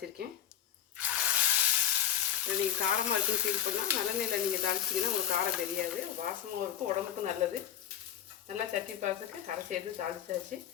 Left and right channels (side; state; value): right; quieter; 10.4 dB